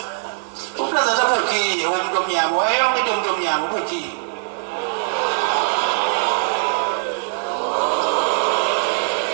uplaza tabukhiye umuntu omnyama wayonke into umuntu omnyama ubukhiye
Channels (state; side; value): silent; left; digital silence